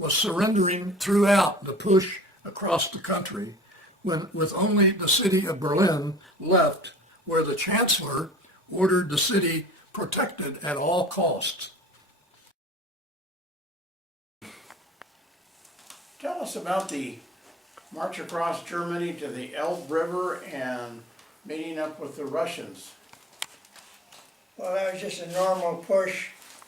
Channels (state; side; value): normal; both; correlation 0.46